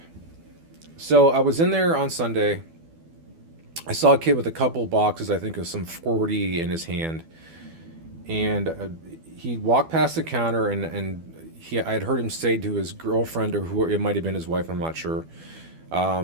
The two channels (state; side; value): late; left; 12 ms